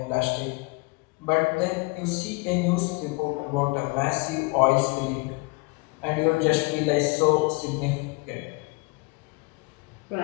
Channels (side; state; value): right; quieter; 28.1 dB